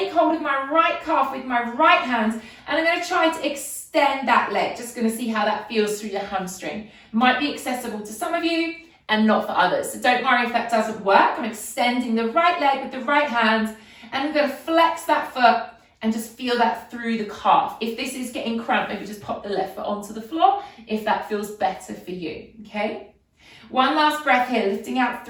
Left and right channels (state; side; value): identical; both; correlation 1.00